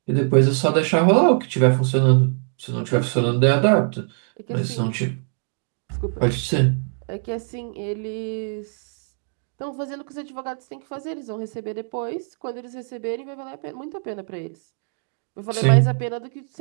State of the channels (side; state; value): left; silent; 63 dB below the other